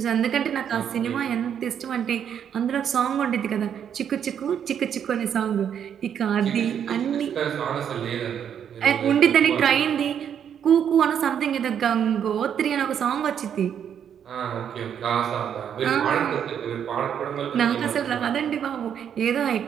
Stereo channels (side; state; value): left; quieter; 8.6 dB